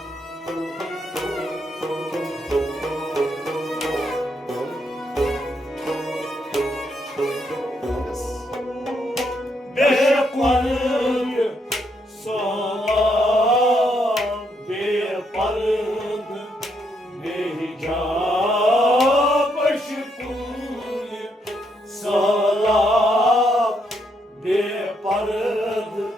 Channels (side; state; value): both; normal; correlation 0.76